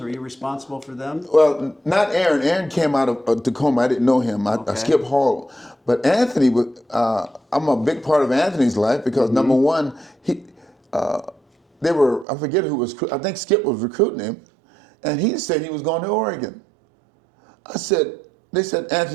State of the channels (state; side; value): drops out; left; at 12.2 s